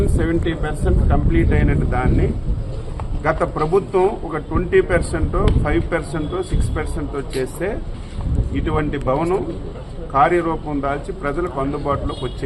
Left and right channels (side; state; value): both; identical; correlation 1.00